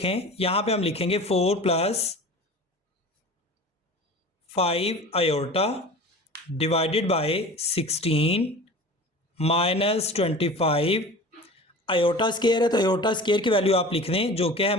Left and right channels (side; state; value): both; normal; correlation 0.38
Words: यहाँ पे हम लिखेंगे 4 + 5 iota divided by 16 minus 25 iota square है, तो आयोटा स्क्वायर की वैल्यू आप लिख दें जो कि है